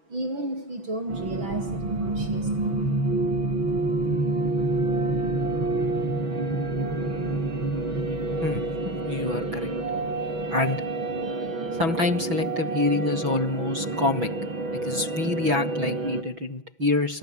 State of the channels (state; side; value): late; left; 6.1 ms